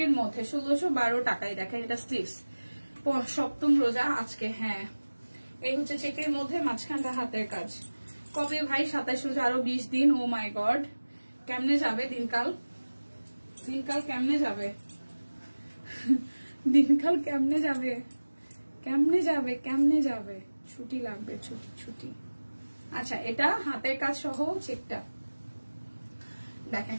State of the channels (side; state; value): both; inverted; correlation -1.00